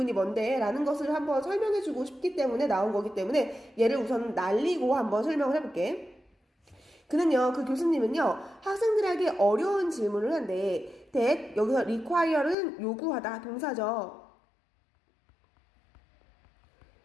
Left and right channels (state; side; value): drops out; right; at 12.6 s